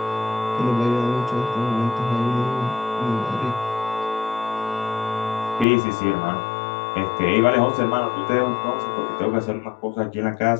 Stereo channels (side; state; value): right; drops out; at 5.7 s